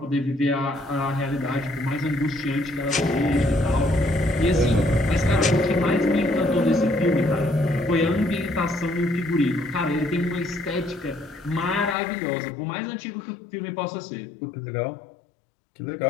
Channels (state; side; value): drops out; right; at 12.0 s